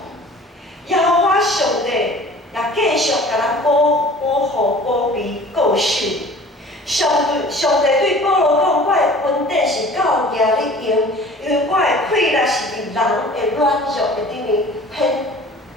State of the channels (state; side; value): normal; both; correlation 0.46